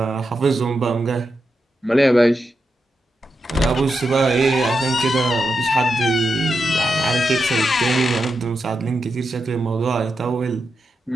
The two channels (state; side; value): normal; both; correlation 0.87